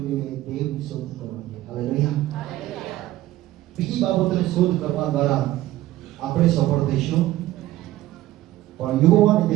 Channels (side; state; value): left; quieter; 15.6 dB